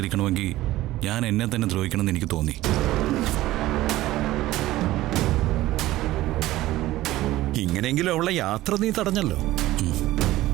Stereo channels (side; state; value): left; quieter; 16.3 dB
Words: ഞാൻ എന്നെ തന്നെ ദ്രോഹിക്കണമെന്ന് എനിക്ക് തോന്നി. ഇങ്ങനെയെങ്കിലും അവളെ യാത്ര നീ തടഞ്ഞല്ലോ.